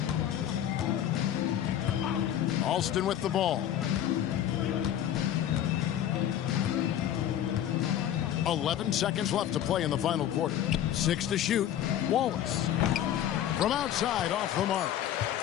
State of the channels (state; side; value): quieter; right; 11.0 dB